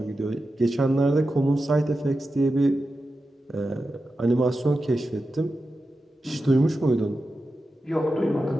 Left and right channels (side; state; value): both; normal; correlation 0.91